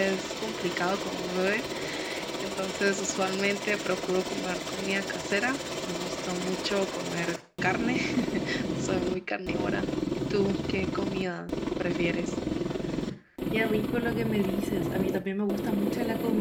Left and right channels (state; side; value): identical; both; correlation 1.00